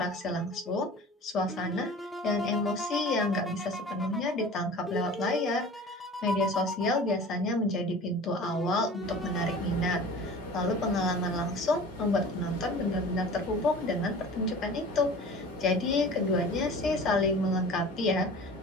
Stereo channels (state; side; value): normal; both; correlation 0.40